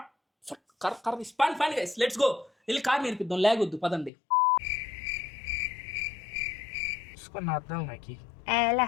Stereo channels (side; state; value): right; drops out; at 4.1 s